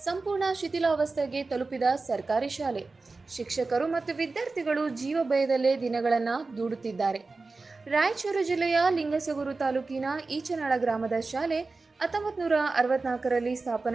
ಸಂಪೂರ್ಣ ಶಿಥಿಲಾವಸ್ಥೆಗೆ ತಲುಪಿದ ಸರ್ಕಾರಿ ಶಾಲೆ. ಶಿಕ್ಷಕರು ಮತ್ತು ವಿದ್ಯಾರ್ಥಿಗಳು ಜೀವ ಭಯದಲ್ಲೇ ದಿನಗಳನ್ನು ದೂಡುತ್ತಿದ್ದಾರೆ. ರಾಯಚೂರು ಜಿಲ್ಲೆಯ ಲಿಂಗಸಗೂರು ತಾಲೂಕಿನ ಈಚನಾಳ ಗ್ರಾಮದ ಶಾಲೆ 1964ರಲ್ಲಿ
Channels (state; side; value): quieter; left; 3.8 dB